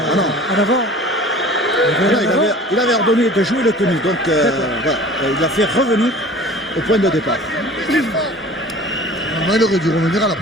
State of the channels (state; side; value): normal; both; correlation 0.43